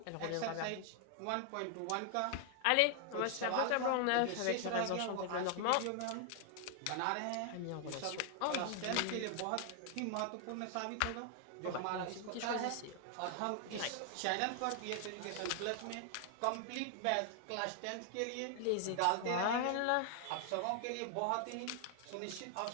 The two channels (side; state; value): both; different; correlation 0.00